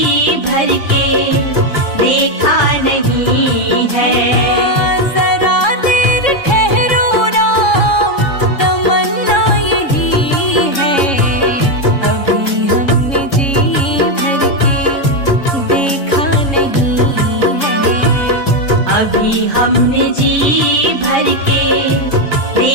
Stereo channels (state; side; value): late; right; 3.7 ms